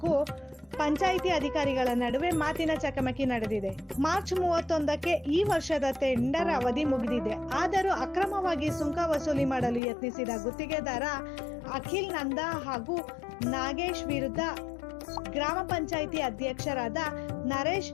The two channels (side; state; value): right; drops out; at 9.8 s